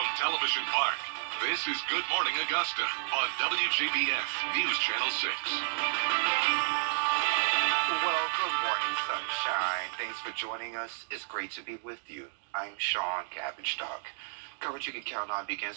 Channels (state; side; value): silent; left; digital silence